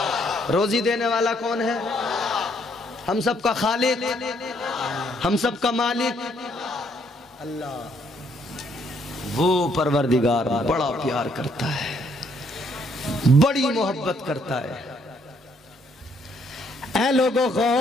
रोजी देने वाला कौन है? हम सबका खालिक, हम सबका मालिक अल्लाह। वो परवरदिगार बड़ा प्यार करता है, बड़ी मोहब्बत करता है। ऐ लोगों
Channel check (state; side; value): normal; both; correlation 0.69